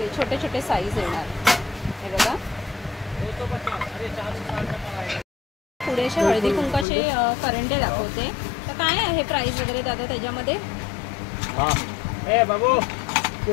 छोटे छोटे साईज येणार. हे बघा पुढे असे हळदी कुंकाचे करंडे दाखवते. तर काय आहे प्राइस वगैरे दादा त्याच्यामध्ये. ए बाबू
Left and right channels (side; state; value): right; drops out; at 6.9 s